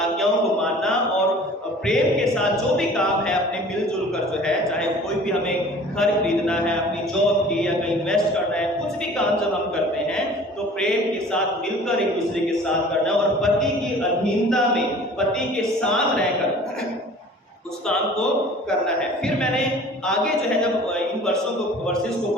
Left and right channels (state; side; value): normal; both; correlation 0.46